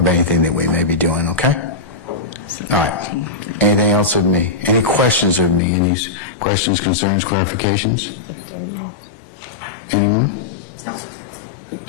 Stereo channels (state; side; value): drops out; right; at 5.6 s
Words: anything that we may be doing, okay? All right. Anything else with me? Any questions of me? Any questions, concerns, clarifications? Anyone?